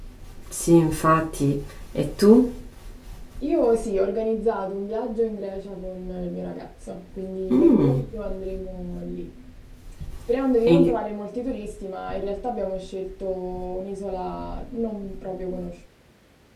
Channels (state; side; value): identical; both; correlation 1.00